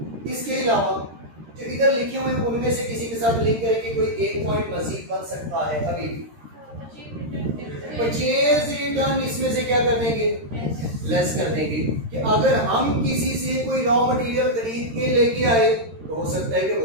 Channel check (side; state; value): left; late; 13 ms